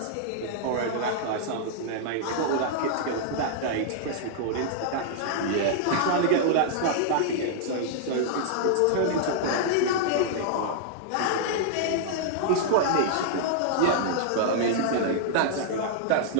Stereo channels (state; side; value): different; both; correlation -0.01